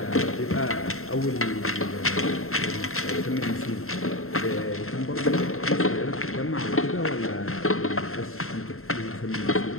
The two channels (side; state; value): right; late; 0.62 ms